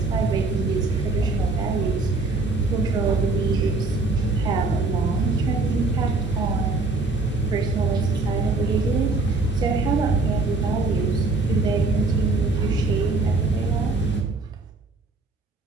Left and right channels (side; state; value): left; quieter; 3.4 dB